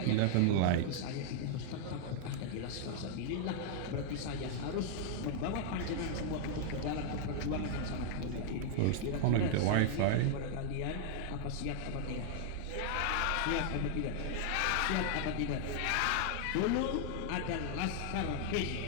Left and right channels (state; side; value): different; both; correlation 0.00